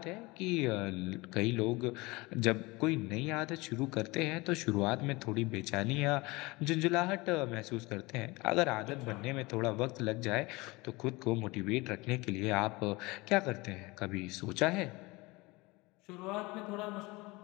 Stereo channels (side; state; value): right; quieter; 23.3 dB